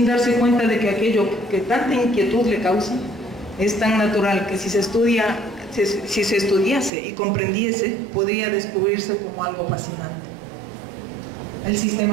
darse cuenta de que aquello que tanta inquietud le causa es tan natural que si se estudiase y comprendiese, podría descubrirse como algo fascinante. El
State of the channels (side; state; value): left; drops out; at 6.9 s